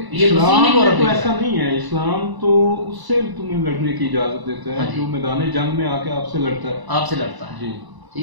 مسیحی مورخ تو ایسا نہیں ہے، اسلام تو اس سے تمہیں لڑنے کی اجازت دیتا ہے جو میدان جنگ میں آ کے آپ سے لڑتا ہے، آپ سے لڑتا ہے،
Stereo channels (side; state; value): left; late; 1.0 ms